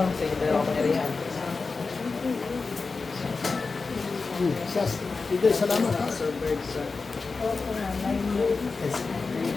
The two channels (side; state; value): right; quieter; 4.2 dB